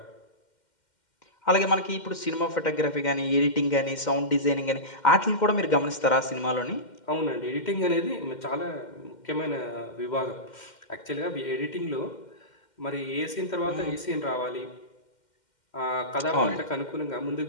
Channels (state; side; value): late; right; 2.1 ms